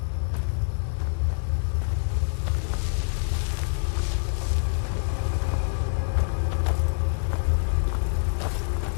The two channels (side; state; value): right; silent; digital silence